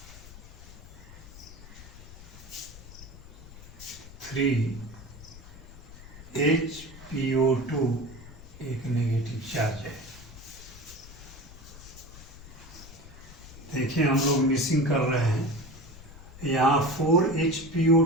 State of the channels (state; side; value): noise; left; rumble, 17 dB below the sound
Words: 3HPO2 एक नेगेटिव चार्ज है। देखिए हम लोग मिसिंग कर रहे हैं, यहाँ